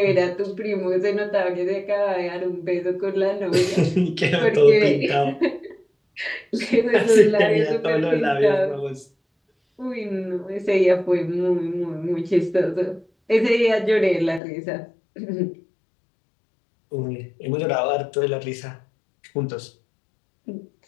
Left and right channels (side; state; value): right; drops out; at 14.4 s